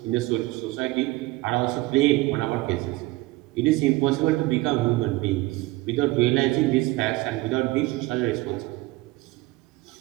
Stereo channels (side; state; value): left; quieter; 20.1 dB